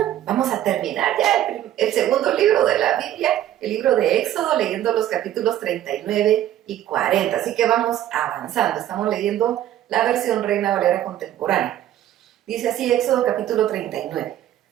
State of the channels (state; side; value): quieter; left; 12.3 dB